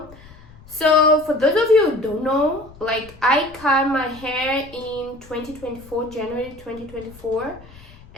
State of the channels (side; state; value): left; noise; rumble, 21 dB below the sound